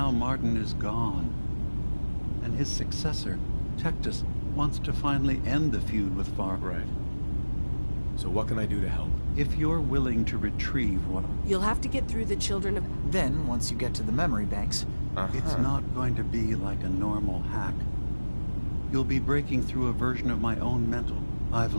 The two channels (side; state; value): both; inverted; correlation -1.00